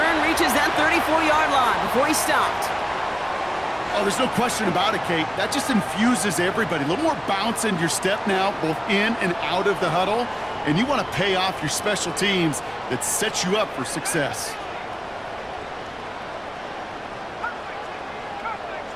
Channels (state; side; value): identical; both; correlation 1.00